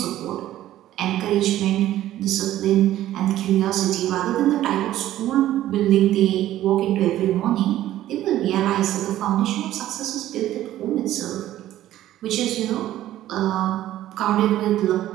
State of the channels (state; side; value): quieter; left; 13.5 dB